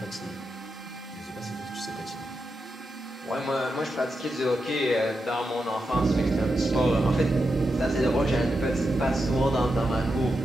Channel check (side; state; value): both; normal; correlation 0.87